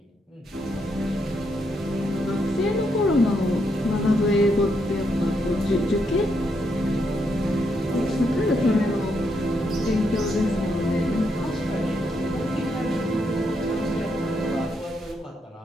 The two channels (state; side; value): normal; both; correlation 0.78